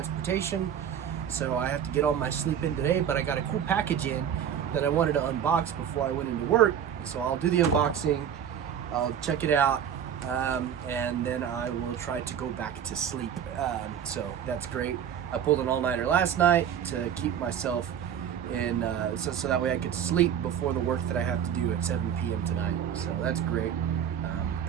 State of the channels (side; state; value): left; quieter; 8.8 dB